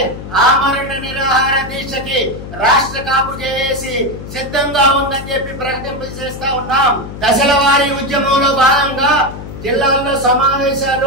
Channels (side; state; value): left; noise; hum, 11 dB below the sound